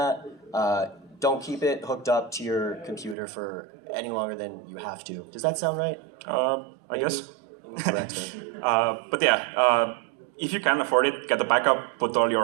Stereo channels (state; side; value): drops out; left; at 3.2 s